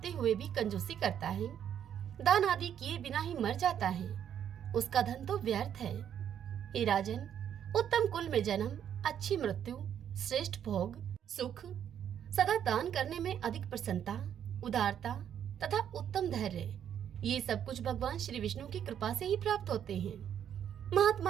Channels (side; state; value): left; quieter; 9.3 dB